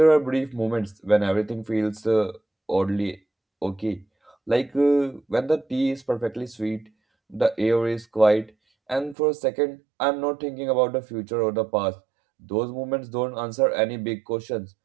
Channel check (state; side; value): drops out; left; at 9.2 s